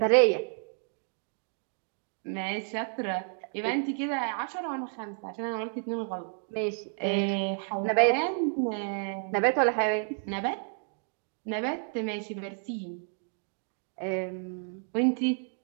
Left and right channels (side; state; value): left; silent; 57 dB below the other